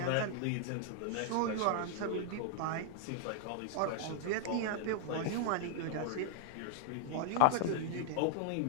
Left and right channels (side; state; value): both; different; correlation -0.01